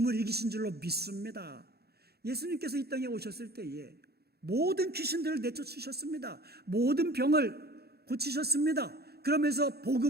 이기신 줄로 믿습니다. 예수님께서 이 땅에 오셨을 때에 모든 귀신들을 내쫓으셨습니다. 모든 병을 고치셨습니다. 그러면서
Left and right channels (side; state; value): left; late; 0.46 ms